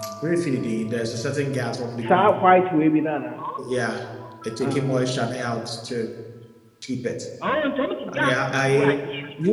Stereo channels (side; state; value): both; identical; correlation 1.00